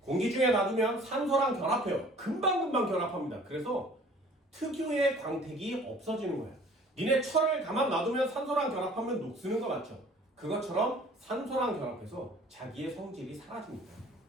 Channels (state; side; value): normal; both; correlation 0.51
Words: 공기 중에 놔두면 산소랑 결합해요. 금방금방 결합합니다. 그래서 특유의 광택이 없어지는 거예요. 니네 철을 가만 놔두면 산소랑 결합하면 녹쓰는 거 맞죠? 그것처럼 산소랑 결합해서 자기의 성질이 사라집니다.